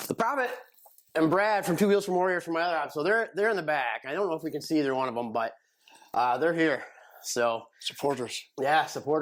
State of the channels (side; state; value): both; identical; correlation 1.00